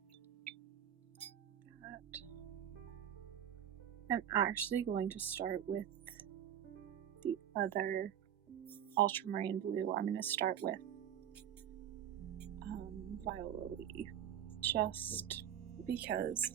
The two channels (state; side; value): quieter; left; 9.9 dB